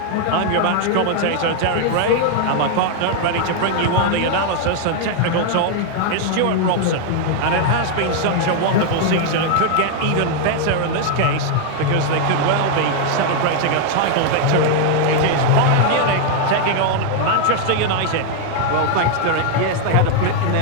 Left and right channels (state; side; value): different; both; correlation 0.00